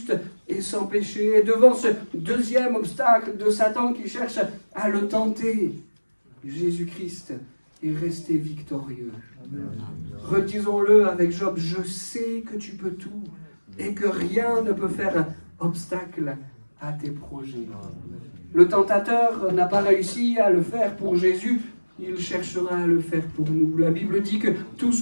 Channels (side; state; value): both; inverted; correlation -1.00